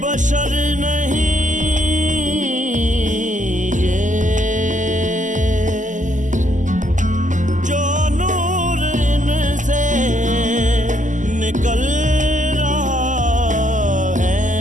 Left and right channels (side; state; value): left; late; 0.37 ms